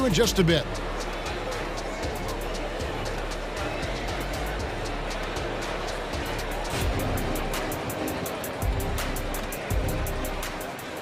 in just a bit.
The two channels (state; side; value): identical; both; correlation 1.00